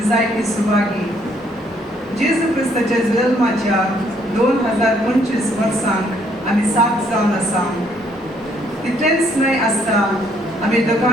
जायती सुभागी. जेजू क्रिस्ताच्या जल्माच्या 2025 वर्सांक आमी साथ जावन आसा. तितलेंच न्हय आसता आमी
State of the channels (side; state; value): both; normal; correlation 0.67